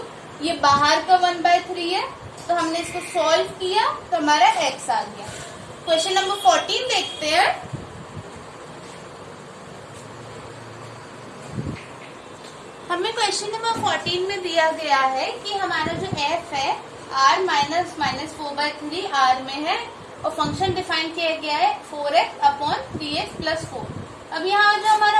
ये बाहर का 1/3 है, तो हमने इसको सॉल्व किया तो हमारा x आ गया। क्वेश्चन नंबर 14 देखते हैं। हमें क्वेश्चन नंबर 14 में दिया गया है कि हमारा जो f है r -4/3 r में है, और फंक्शन डिफाइन किया गया है 4x/3x + 4। अब यहाँ जो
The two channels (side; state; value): both; identical; correlation 1.00